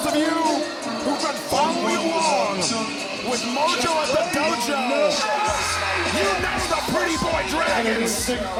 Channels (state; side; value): identical; both; correlation 1.00